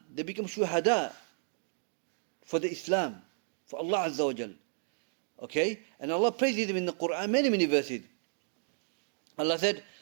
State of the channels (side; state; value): left; silent; digital silence